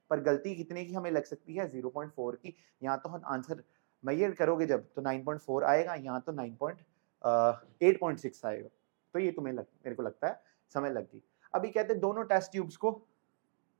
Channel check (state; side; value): silent; left; digital silence